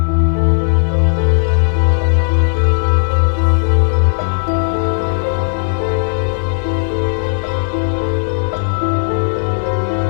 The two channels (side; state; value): right; silent; digital silence